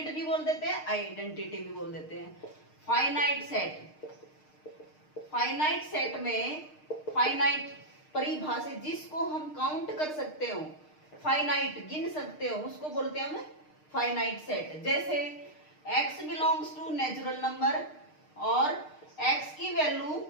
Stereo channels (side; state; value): right; late; 6.5 ms